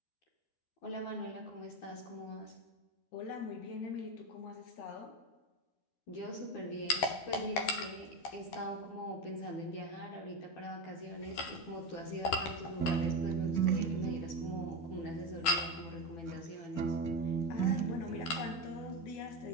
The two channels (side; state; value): right; late; 13 ms